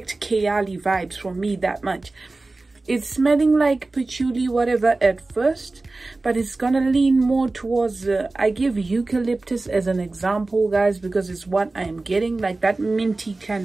Keali vibes from me that much. It's smelling like patchouli whatever at first, but it's gonna lean more towards I give eucalyptus as an example, guys, because it's what I am getting, like that minty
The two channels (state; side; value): quieter; left; 3.3 dB